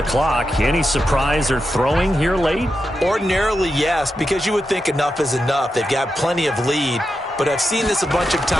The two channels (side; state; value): both; normal; correlation 0.88